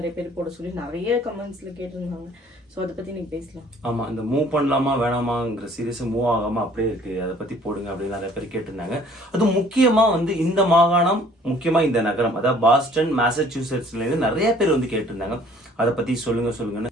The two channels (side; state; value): both; normal; correlation 0.56